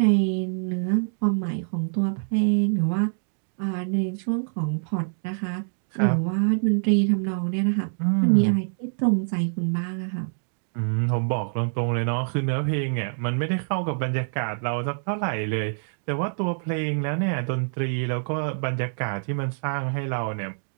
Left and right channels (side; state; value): left; silent; digital silence